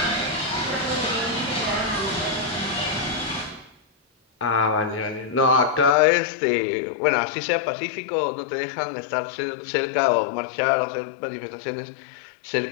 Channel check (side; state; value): right; drops out; at 6.0 s